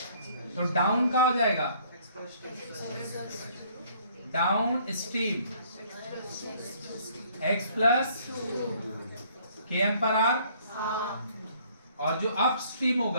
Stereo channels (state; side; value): inverted; both; correlation -0.61